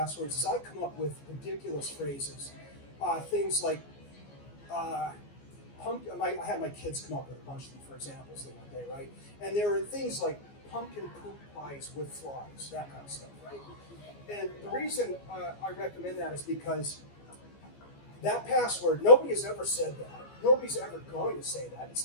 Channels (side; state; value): right; late; 14 ms